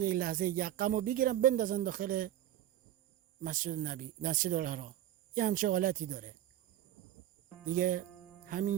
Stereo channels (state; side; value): quieter; left; 12.4 dB